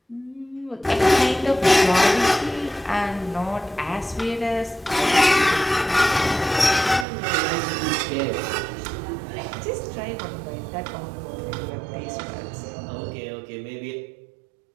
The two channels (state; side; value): drops out; left; at 7.1 s